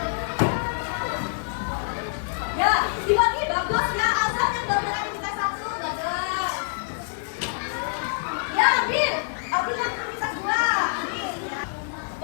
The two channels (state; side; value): silent; right; digital silence